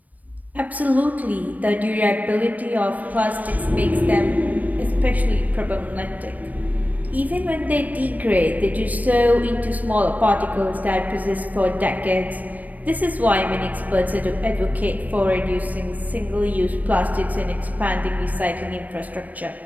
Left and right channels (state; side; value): late; left; 0.076 ms